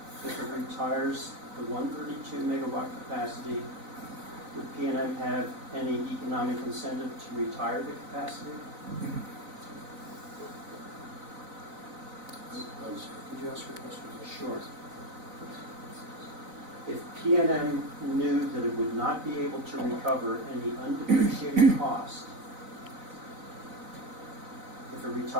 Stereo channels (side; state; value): left; late; 4.0 ms